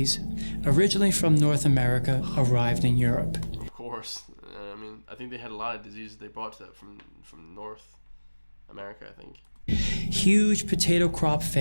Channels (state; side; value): inverted; both; correlation -1.00